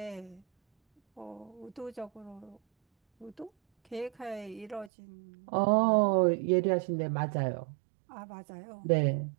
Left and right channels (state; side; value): drops out; left; at 4.9 s